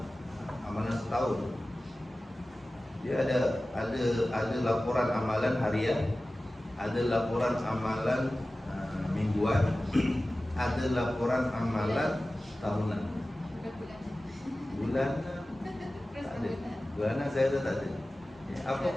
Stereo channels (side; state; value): both; normal; correlation 0.96